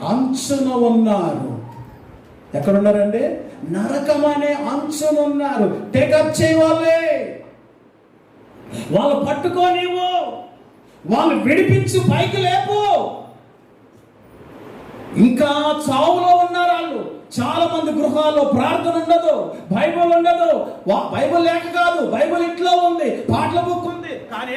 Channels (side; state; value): both; identical; correlation 1.00